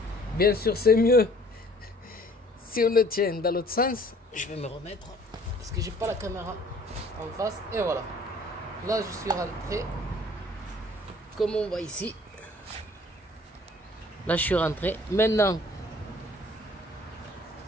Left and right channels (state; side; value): normal; both; correlation 0.54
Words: Bien sûr, c'est mieux si on le tient dans l'autre sens. Je vais me remettre parce que j'ai pas la caméra en face. Et voilà. Là, je suis rentré. Comme on voit ici. Là, je suis rentré. Maintenant,